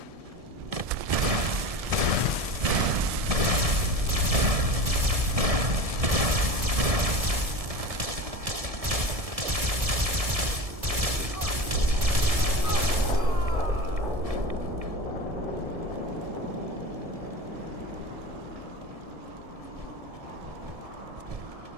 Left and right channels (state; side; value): late; left; 1.7 ms